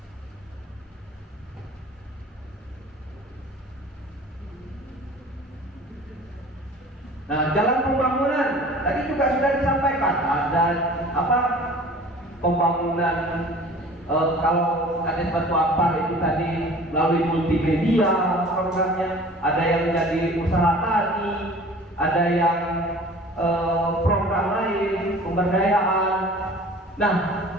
Nah, jalan pembangunan tadi juga sudah disampaikan. Ada apa? Pembangunan kalau ada Batu Ampar itu tadi melalui multimedia programnya, ada yang jadi usaha tani, ada yang program lain, pemberdayaan. Nah,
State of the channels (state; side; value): normal; both; correlation 0.45